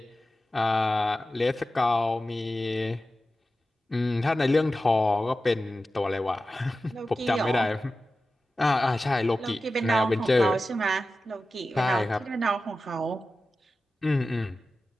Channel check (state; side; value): normal; both; correlation 0.94